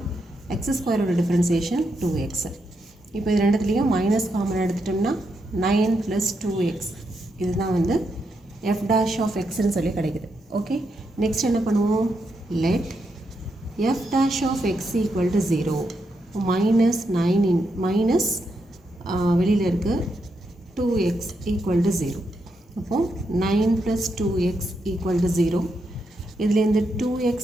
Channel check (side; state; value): both; normal; correlation 0.82